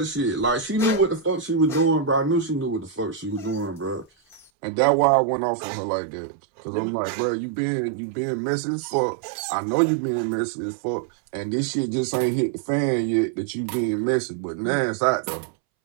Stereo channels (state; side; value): drops out; left; at 4.5 s